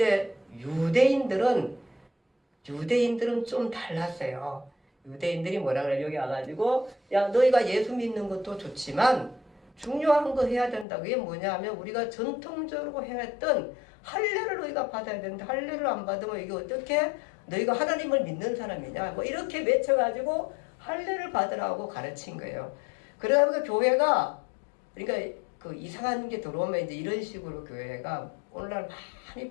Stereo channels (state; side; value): drops out; right; at 10.9 s